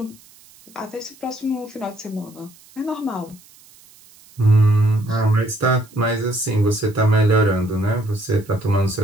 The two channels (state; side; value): noise; right; hiss, 26 dB below the sound